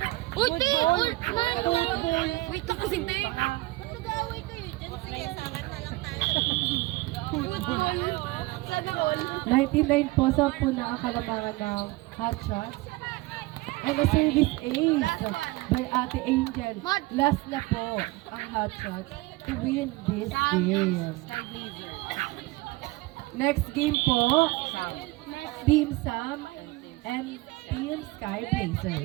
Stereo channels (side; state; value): left; quieter; 20.9 dB